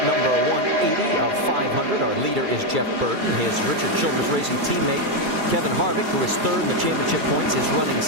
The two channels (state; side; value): late; left; 2.3 ms